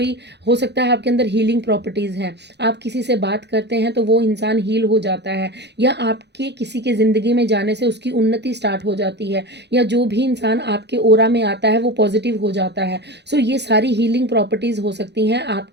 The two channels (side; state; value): left; late; 0.50 ms